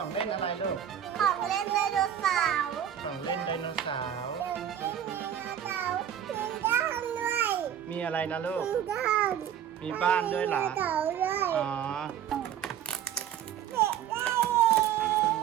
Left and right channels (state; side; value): quieter; left; 9.8 dB